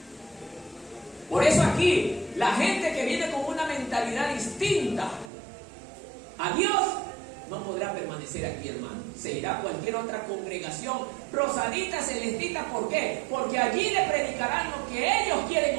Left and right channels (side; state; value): left; drops out; at 5.3 s